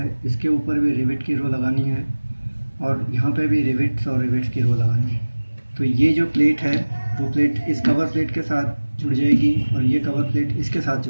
इसके ऊपर भी रिवेट की रो लगानी है और यहाँ पे भी रिवेट्स और रिवेट्स की रो लगानी है। तो ये जो प्लेट है वो प्लेट इस कवर प्लेट के साथ जुड़ जाएगी और ये कवर प्लेट इसके साथ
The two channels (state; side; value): inverted; both; correlation -1.00